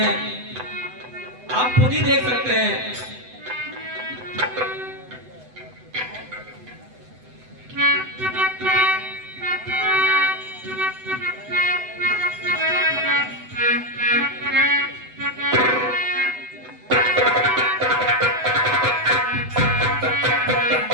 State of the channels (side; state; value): left; late; 8.0 ms